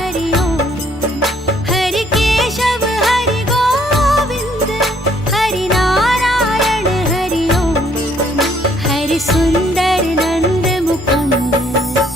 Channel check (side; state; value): both; normal; correlation 0.65